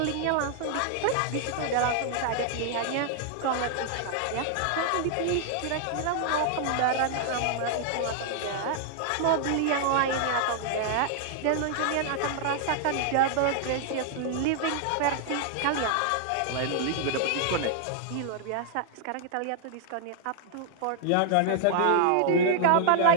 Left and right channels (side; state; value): both; different; correlation -0.01